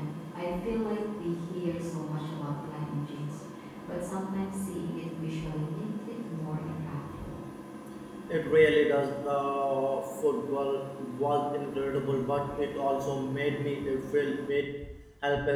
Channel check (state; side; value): identical; both; correlation 1.00